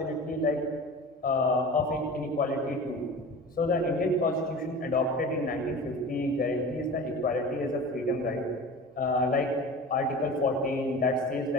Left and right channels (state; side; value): normal; both; correlation 0.35